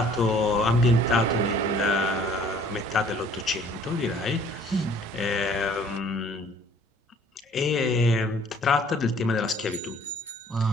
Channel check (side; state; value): both; normal; correlation 0.55